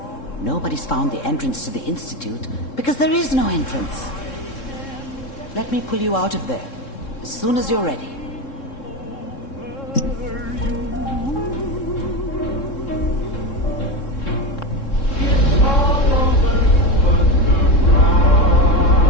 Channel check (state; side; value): late; right; 3.7 ms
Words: Nobody's found the entrance to the Institute because there is no entrance. Let me pull you out of there as soon as you're ready.